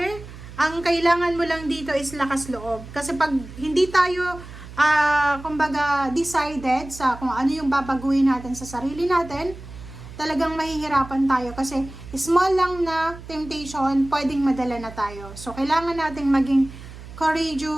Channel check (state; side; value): noise; right; hum, 15 dB below the sound